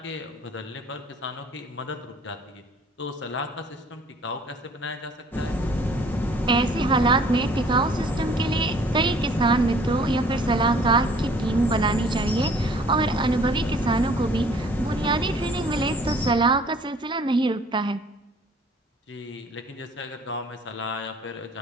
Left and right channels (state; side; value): normal; both; correlation 0.55